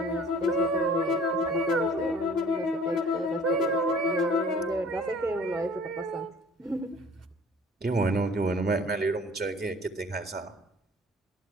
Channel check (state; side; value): normal; both; correlation 0.50